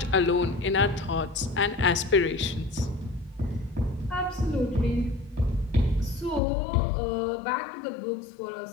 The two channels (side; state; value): right; drops out; at 6.4 s